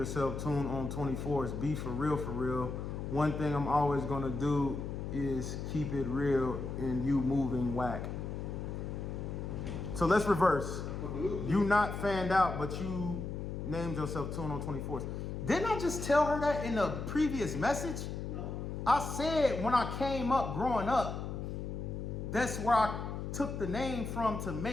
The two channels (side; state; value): left; noise; hum, 5 dB below the sound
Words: Tune on 24s. Be for real, for real. One thing I'm always gonna do is keep it real and you moving whack. So let's reverse. You not fanned out, but you named yourself Tune on 24s. Didn't I just tell her that in the previous message? No. I said when I came up growing up, that's where I took the name from to